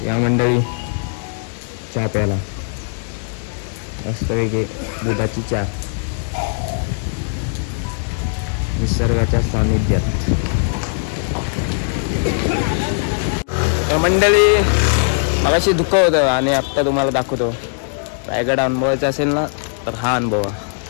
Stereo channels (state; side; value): silent; right; digital silence